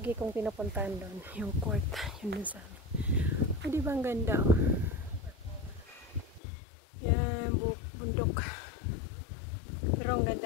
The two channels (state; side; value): drops out; right; at 6.4 s